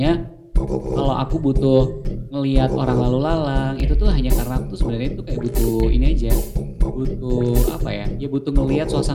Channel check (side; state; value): both; identical; correlation 1.00